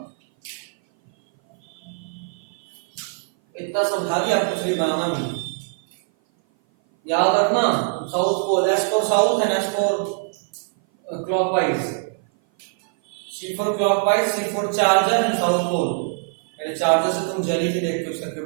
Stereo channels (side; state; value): left; silent; 57 dB below the other